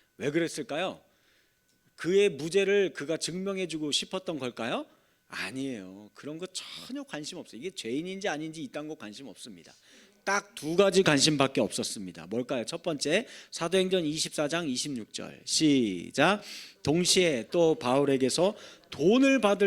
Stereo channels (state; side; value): identical; both; correlation 1.00